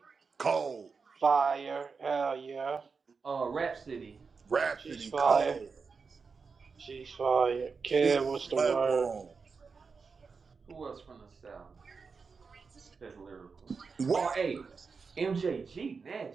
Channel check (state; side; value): quieter; left; 5.0 dB